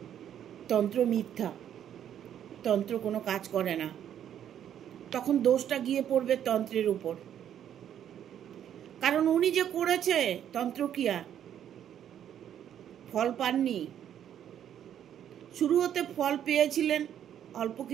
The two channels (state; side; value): quieter; left; 10.0 dB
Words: তন্ত্র মিথ্যা, তন্ত্র কোনো কাজ করে না। তখন দোষটা গিয়ে পড়বে তন্ত্রের উপর, কারণ উনি যে করেছে তন্ত্রক্রিয়া, ফল পাননি। শুরু হতে ফল পেয়েছিলেন, অল্প